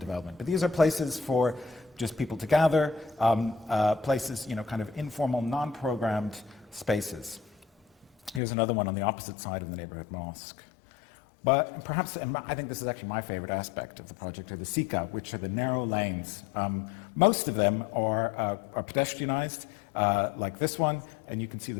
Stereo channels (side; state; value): right; drops out; at 8.4 s